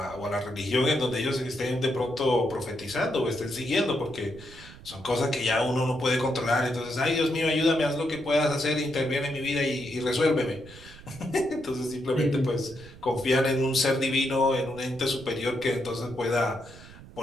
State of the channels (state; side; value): noise; right; rumble, 18 dB below the sound